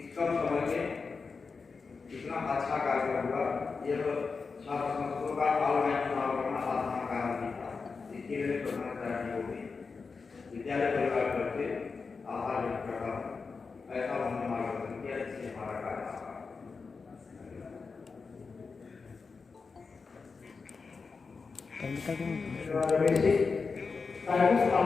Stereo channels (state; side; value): quieter; right; 4.8 dB